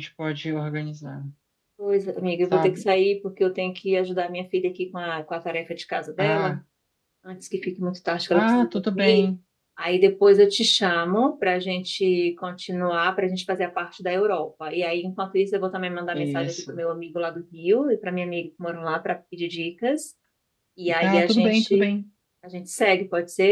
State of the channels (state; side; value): identical; both; correlation 1.00